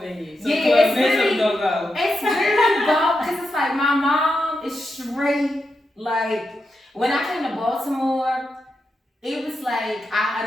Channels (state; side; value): normal; both; correlation 0.86